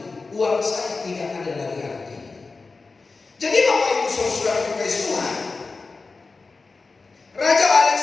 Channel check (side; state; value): right; quieter; 4.0 dB